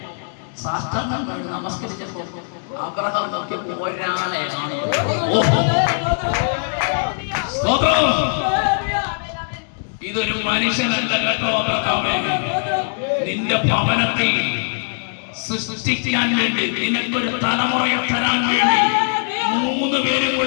സാഷ്ടാംഗം കണ്ട് നമസ്കരിച്ചപ്പോ അബ്രഹാം നോക്കിയപ്പോ ഒരാളെയാണ്. ഇതൊരു മനുഷ്യനല്ല കേട്ടോ അബ്രഹാമേ. നിന്റെ ഭവനത്തിൽ സൃഷ്ടിക്കാൻ വേണ്ടി, നിനക്കൊരു തലമുറയെ തരാൻ വേണ്ടി 3 പേരും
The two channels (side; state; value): right; silent; digital silence